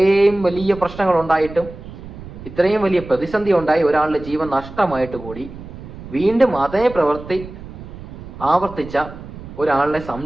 വലിയ പ്രശ്നങ്ങൾ ഉണ്ടായിട്ടും, ഇത്രയും വലിയ പ്രതിസന്ധി ഉണ്ടായി, ഒരാളുടെ ജീവൻ നഷ്ടമായിട്ട് കൂടി വീണ്ടും അതേ പ്രവൃത്തി ആവർത്തിച്ച ഒരാളെ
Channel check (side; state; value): right; noise; rumble, 14 dB below the sound